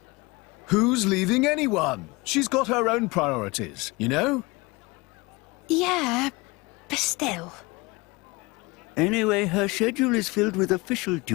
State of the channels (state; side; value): quieter; right; 24.2 dB